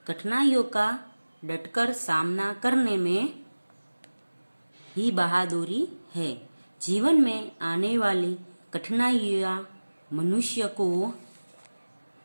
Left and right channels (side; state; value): both; inverted; correlation -1.00